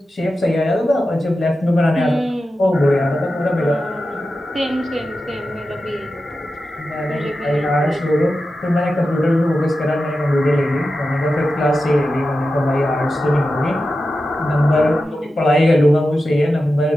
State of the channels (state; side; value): normal; both; correlation 0.92